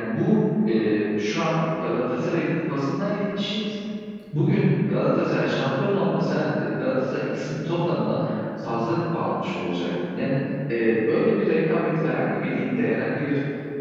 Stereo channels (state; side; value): identical; both; correlation 1.00